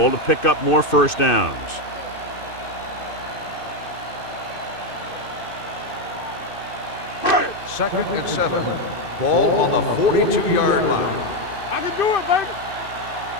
to pick up more first downs. Second and 7. Ball on the 42-yard line. I can do it, baby.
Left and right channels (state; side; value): late; right; 2.6 ms